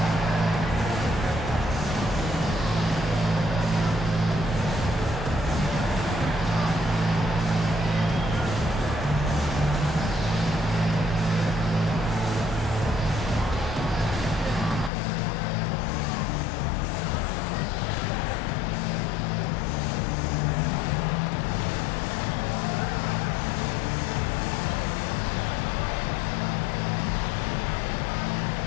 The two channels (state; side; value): drops out; right; at 14.9 s